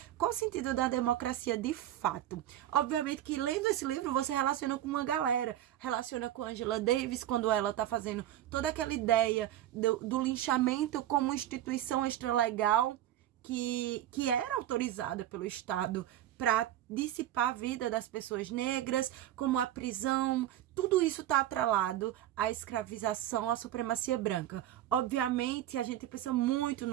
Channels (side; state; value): left; quieter; 12.6 dB